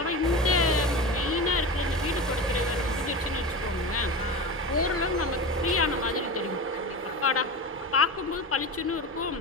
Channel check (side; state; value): both; normal; correlation 0.26